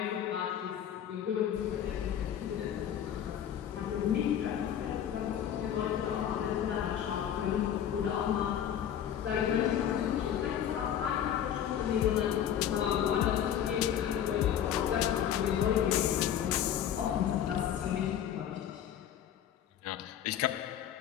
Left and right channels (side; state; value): right; quieter; 9.9 dB